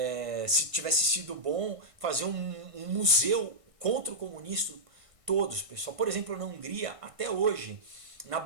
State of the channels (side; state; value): left; late; 1.6 ms